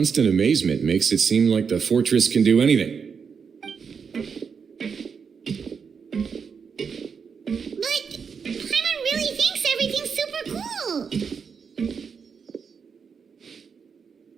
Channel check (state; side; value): quieter; left; 6.2 dB